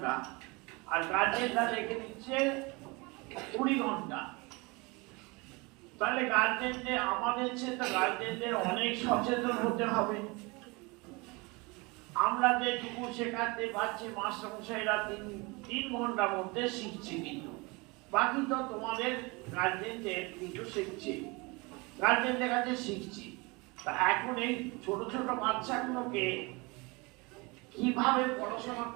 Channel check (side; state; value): left; quieter; 26.5 dB